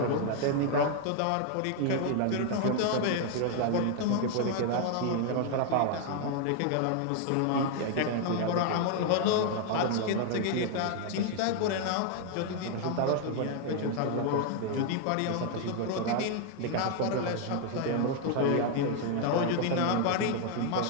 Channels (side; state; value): both; different; correlation 0.00